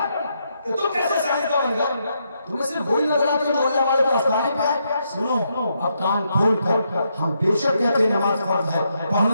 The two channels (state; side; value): inverted; both; correlation -0.79